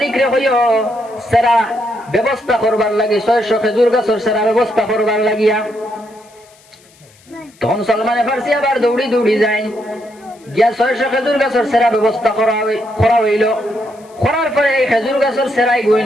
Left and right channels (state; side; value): noise; left; hiss, 29 dB below the sound